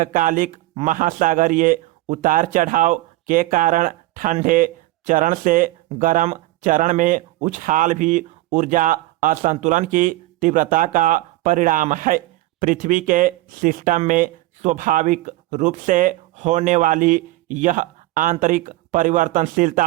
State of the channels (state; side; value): quieter; left; 18.4 dB